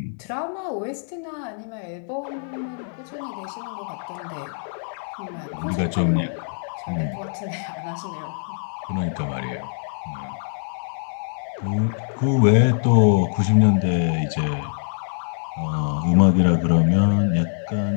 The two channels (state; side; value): silent; right; digital silence